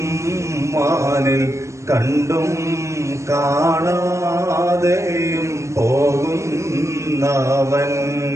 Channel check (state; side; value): late; left; 0.14 ms